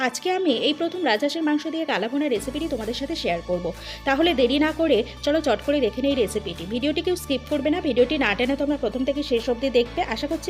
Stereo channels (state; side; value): identical; both; correlation 1.00